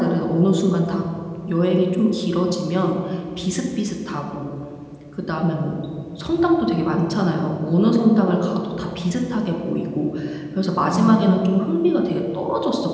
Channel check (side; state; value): both; identical; correlation 1.00